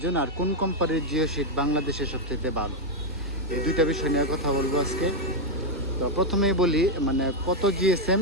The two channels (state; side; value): normal; both; correlation 0.00